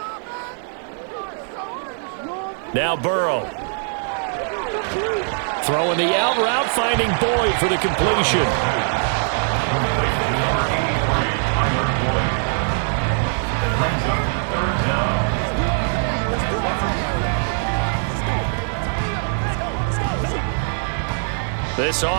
Now Burrow. Throwing the out route, finding Boyd for the completion. This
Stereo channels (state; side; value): silent; left; digital silence